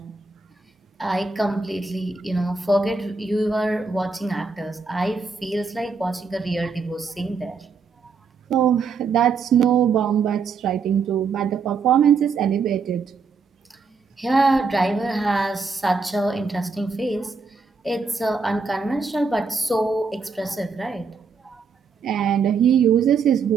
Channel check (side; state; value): left; quieter; 4.9 dB